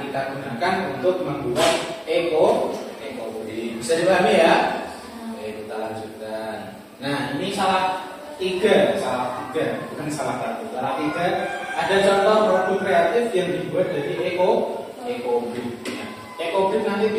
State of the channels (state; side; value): identical; both; correlation 1.00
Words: kita gunakan untuk membuat ekobrik. Bisa dipahami ya? Oke, kita lanjutkan. Nah, ini salah tiga, bukan salah satu. Salah tiga. Ada contoh produk kreatif yang dibuat dari ekobrik. Ekobrik nanti